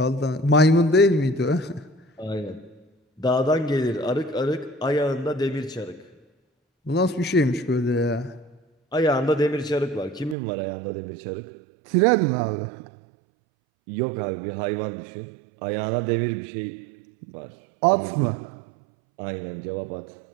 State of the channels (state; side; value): drops out; left; at 10.4 s